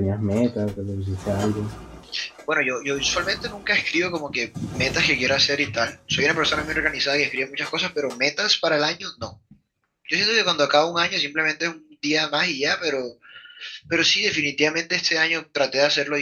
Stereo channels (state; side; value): identical; both; correlation 1.00